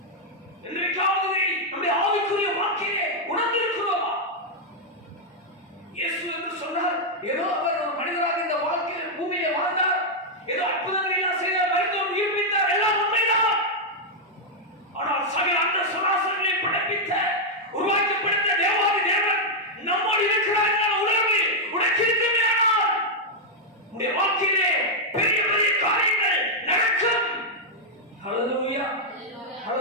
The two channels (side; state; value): both; normal; correlation -0.02